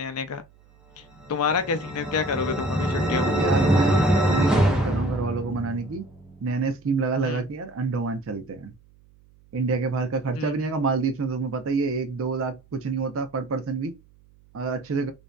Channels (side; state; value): right; noise; hum, 29 dB below the sound